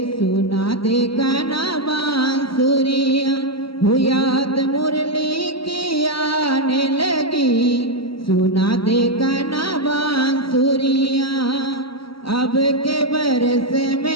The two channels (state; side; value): late; right; 0.75 ms